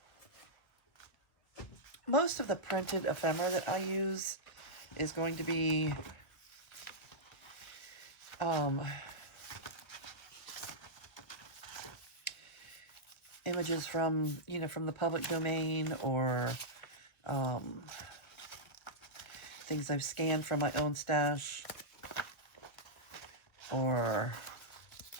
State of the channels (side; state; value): right; late; 1.9 ms